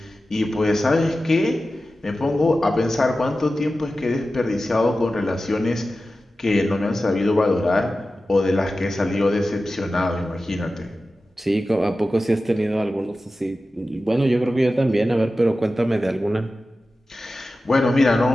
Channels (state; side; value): normal; both; correlation 0.94